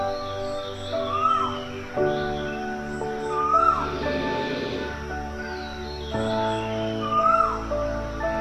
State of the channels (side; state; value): both; identical; correlation 1.00